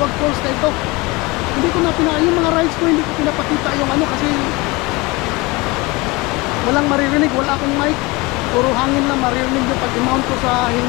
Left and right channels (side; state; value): right; quieter; 24.2 dB